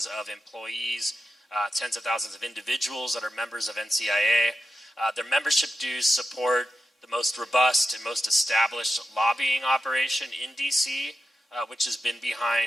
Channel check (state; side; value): normal; both; correlation 0.88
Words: of employees, tens of thousands of individuals that are members of NCIA. Their membership dues support the most robust and most established lobbying operation in DC, which has been